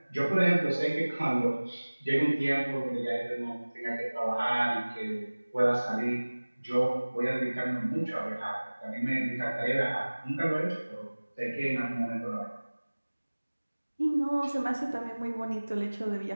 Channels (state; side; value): inverted; both; correlation -1.00